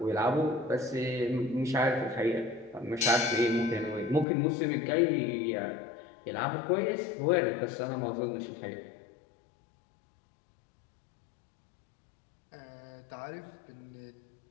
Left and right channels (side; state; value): right; drops out; at 4.2 s